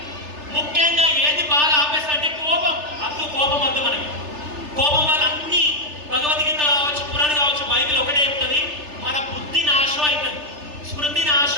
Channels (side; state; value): left; late; 3.3 ms